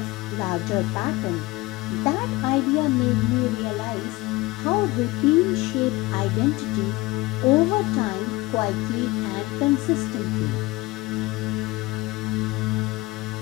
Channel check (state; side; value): quieter; right; 21.1 dB